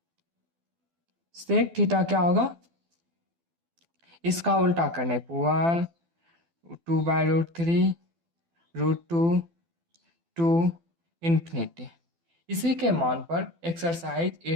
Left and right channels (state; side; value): late; left; 12 ms